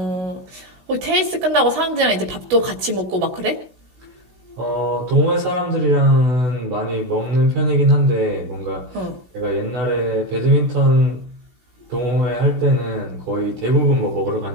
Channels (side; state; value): left; late; 16 ms